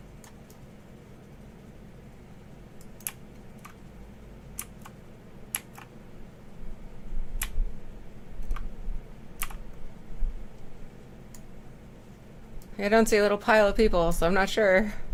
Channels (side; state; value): both; identical; correlation 1.00